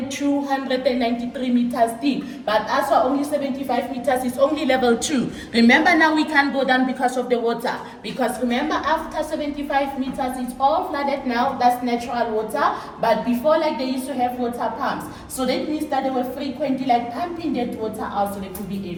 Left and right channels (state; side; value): identical; both; correlation 1.00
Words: meters deep. But as for only 75 meters, it's only level 2. Remember now we can't go down because of the water. Because remember, after 75 meters, it's all flooded now. That's natural water. But before, like they used to have water pumps. So that means that they were frequently like pumping that water out so they could be